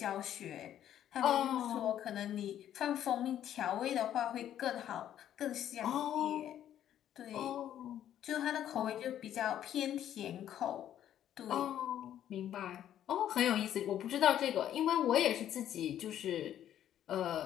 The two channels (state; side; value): quieter; right; 11.0 dB